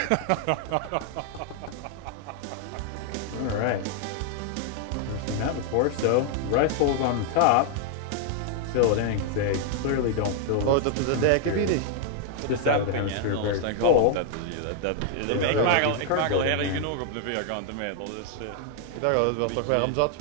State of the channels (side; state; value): both; different; correlation 0.00